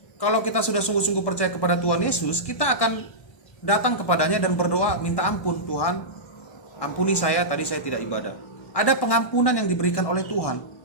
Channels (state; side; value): late; right; 1.1 ms